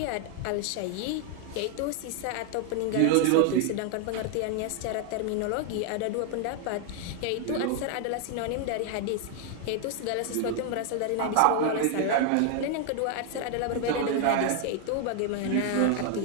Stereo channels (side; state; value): both; different; correlation 0.00